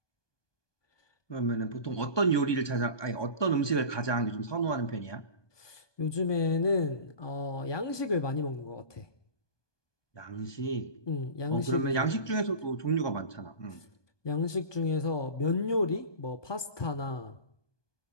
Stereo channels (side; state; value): right; late; 1.2 ms